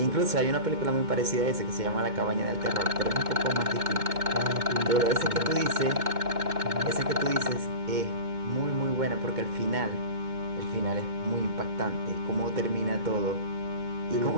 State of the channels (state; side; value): late; left; 2.2 ms